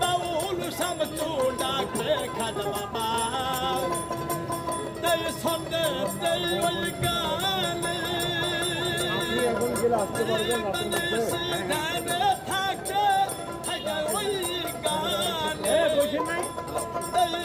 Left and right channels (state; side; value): identical; both; correlation 1.00